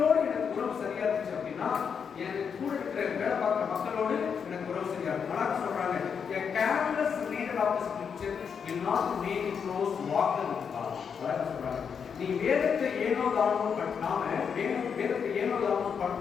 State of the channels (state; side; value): quieter; right; 6.7 dB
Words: எனக்கு உறவு சரியா இருந்துச்சு அப்படின்னா எனக்கு கூட இருக்கிற வேலை பார்க்குற மக்களோடு எனக்கு உறவு சரியா இருக்கும். நல்லா சொல்றாங்க, a careless reader of the scripture will not make a close walker with God. அதான் சொல்றாங்க, நீ வேதத்தை ஏனோ தானோ வேதத்தை ஏனோ தானோ